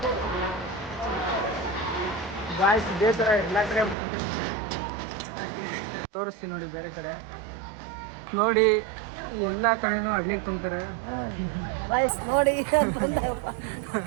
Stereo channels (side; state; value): left; drops out; at 4.0 s